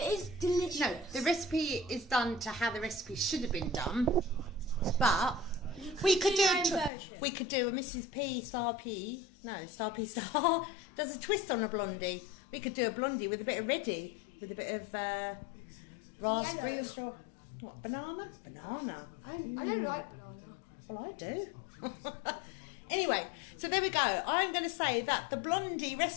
is delicious. No, the recipe is done to how the recipe should have been done. But we could do do your own version. we could do a Mrs. P Star P. No, Star P Star does a twist on a blondie. We could do a blondie with a bit of ready, with a bit of raspberry Yellow. or straw. What, banana? Banana. I don't like banana. Well, I do. Anyway, so there we go. I'm going to say that the blondie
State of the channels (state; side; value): drops out; right; at 6.9 s